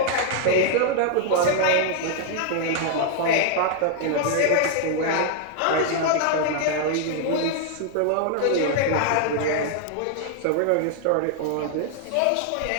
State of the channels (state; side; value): different; both; correlation 0.00